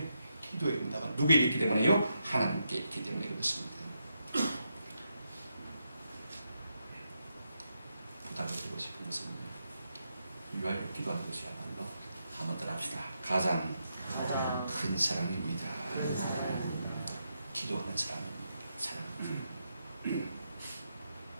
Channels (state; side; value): inverted; both; correlation -0.83